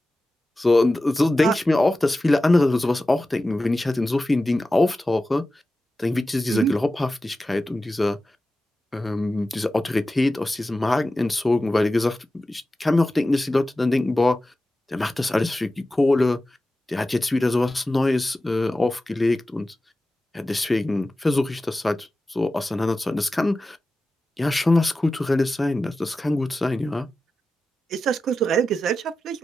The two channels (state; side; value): normal; both; correlation 0.94